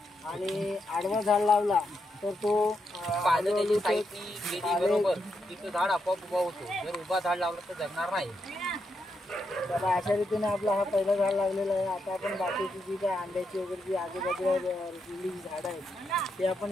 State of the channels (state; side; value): normal; both; correlation 0.82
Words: आणि आडवा झाड लावला तर तो पानं त्याची साईडनी गेली बरोबर की तो झाड आपोआप उभा होतो. जर उभा झाड लावला तर जगणार नाही. तर अशा रीतीने आपला हा पहिला झाड लागलेला आहे. आता आपण बाकीची जी काय आंब्याची वगैरे जी आजूबाजूला रुजलेली झाडं आहेत ते आपण